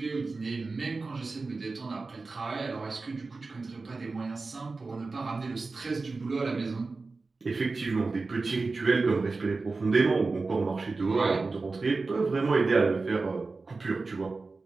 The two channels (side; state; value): left; quieter; 3.8 dB